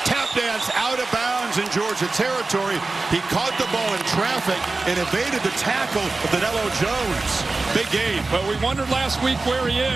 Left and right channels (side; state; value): left; quieter; 3.5 dB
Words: tap dance out of bounds in Georgia territory. He caught the ball in traffic and evaded the tackle of Danilo Jones. Big gain. But we wondered last week where he